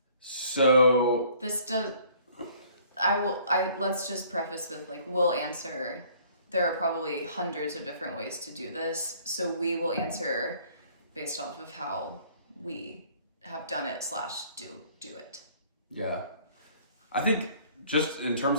So let's just preface with we'll answer. There are probably hundreds of different ways to do this, so we will answer based off of how we have done it / do it. Yeah. I think just in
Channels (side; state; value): both; inverted; correlation -0.57